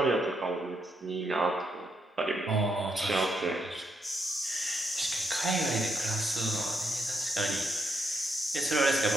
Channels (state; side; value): normal; both; correlation 0.78